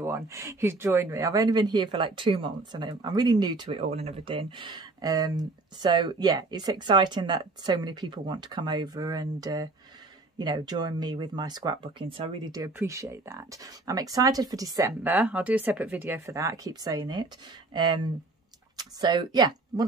who's joined me. I've only been here for like 2 months, and I'm really new to it all and everything. So yeah, it's exciting that so many people want to come over and you know, join me with my scrapbooking. So I really do appreciate that. I'm excited for December. I'll do a separate video for that. I keep saying it. So yeah,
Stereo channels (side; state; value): left; quieter; 3.3 dB